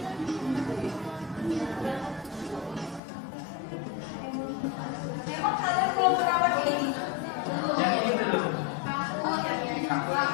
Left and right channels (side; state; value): right; drops out; at 3.0 s